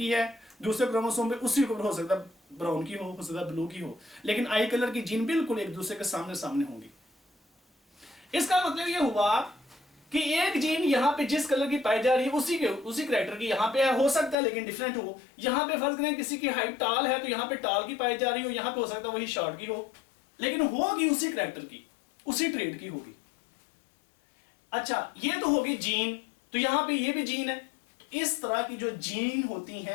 है, दूसरे क्रोमोसोम पे उसी के ऊपर हो सकता है ब्राउन की हो सकता है ब्लू की हो, लेकिन आई कलर की जीन बिल्कुल एक दूसरे के सामने सामने होंगी। इसका मतलब ये हुआ कि एक जीन यहाँ पे जिस कलर की पाई जा रही है उसी कैरेक्टर की यहाँ पे हो सकता है लेकिन डिफरेंट हो। यहाँ पे फर्ज करें किसी की हाइट टाल है तो यहाँ पे टाल की पाई जा रही हो, यहाँ पे हो सकता है वही शॉर्ट की हो, लेकिन होगी उसी कैरेक्टर की, उसी ट्रेड की होगी। अच्छा, ये तो होगी जीन, तो यहां पे ये भी जीन है। तो इस तरह की जो जीन होती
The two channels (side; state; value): right; drops out; at 14.4 s